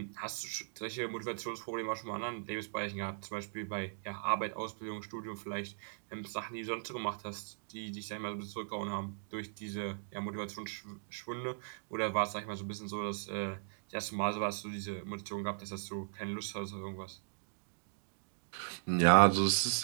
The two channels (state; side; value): silent; left; digital silence